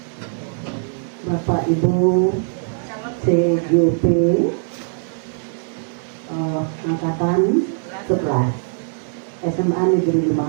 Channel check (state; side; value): silent; left; digital silence